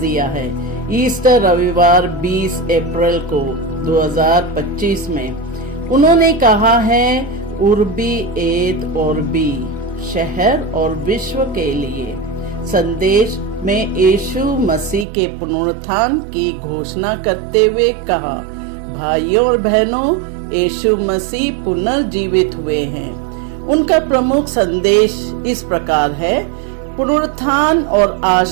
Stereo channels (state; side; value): drops out; left; at 15.1 s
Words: है ईस्टर रविवार 20 अप्रैल को 2025 में। उन्होंने कहा है उर्बी एत ऑर्बी, शहर और विश्व के लिए संदेश में यीशु मसीह के पुनरुत्थान की घोषणा करते हुए कहा, भाइयों और बहनों, यीशु मसीह पुनर्जीवित हुए हैं। उनका प्रमुख संदेश इस प्रकार है, पुनरुत्थान और